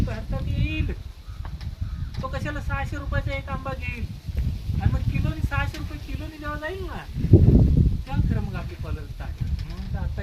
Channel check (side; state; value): both; identical; correlation 1.00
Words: भारतात येईल. तो कशाला 600 रुपयाचा एक आंबा घेईल आणि मग किलोनी 600 रुपये किलोनी जेव्हा जाईल ना तेव्हा खरं मग आपली पॉलर स्टार्ट. म्हणून आता